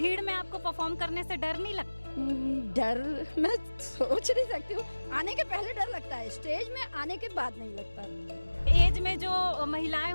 में आपको परफॉर्म करने से डर नहीं लगता? डर मैं सोच नहीं सकती हूँ, आने के पहले डर लगता है, स्टेज में आने के बाद नहीं लगता। एज में जो महिलाएं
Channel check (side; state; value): both; inverted; correlation -1.00